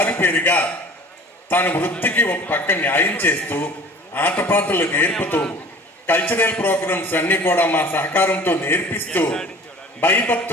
తన వృత్తికి ఒక పక్క న్యాయం చేస్తూ, ఆటపాటలు నేర్పుతూ, కల్చరల్ ప్రోగ్రామ్స్ అన్ని కూడా మా సహకారంతో నేర్పిస్తూ,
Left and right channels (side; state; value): both; normal; correlation 0.46